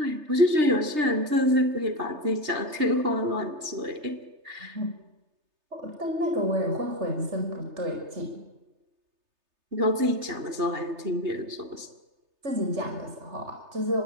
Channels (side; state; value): left; late; 3.3 ms